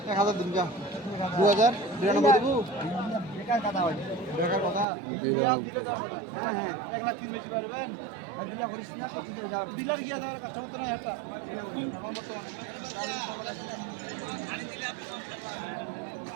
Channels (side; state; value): left; drops out; at 4.9 s